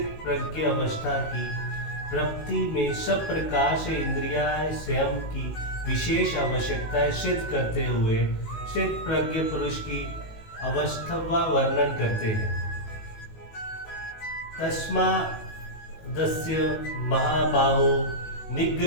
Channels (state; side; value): late; right; 19 ms